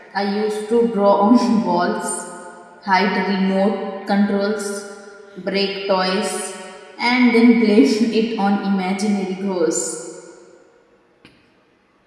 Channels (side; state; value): both; identical; correlation 1.00